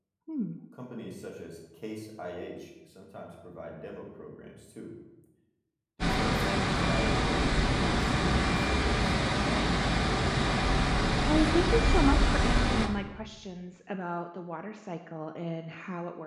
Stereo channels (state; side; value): identical; both; correlation 1.00